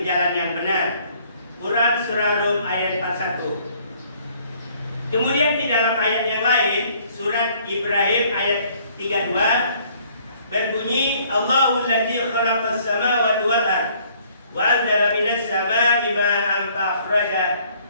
jalan yang benar. Quran surah Rum ayat 41. Kemudian di dalam ayat yang lain surat Ibrahim ayat 32 berbunyi Allahul ladzi khalaqas samawati wal ard wa anzala minas samaa'i ma'an fa akhraja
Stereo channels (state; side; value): inverted; both; correlation -0.61